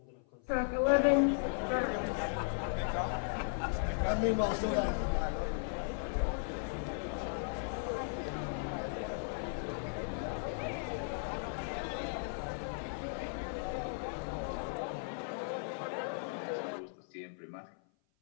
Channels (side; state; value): right; silent; 53 dB below the other